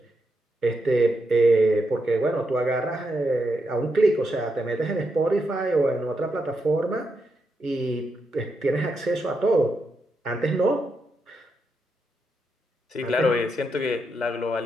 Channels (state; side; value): normal; both; correlation 0.83